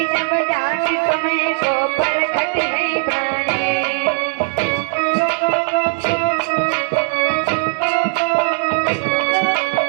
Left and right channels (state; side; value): silent; left; digital silence